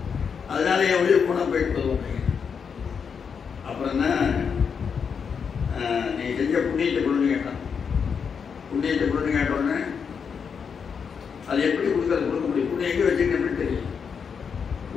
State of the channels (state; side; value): quieter; right; 6.4 dB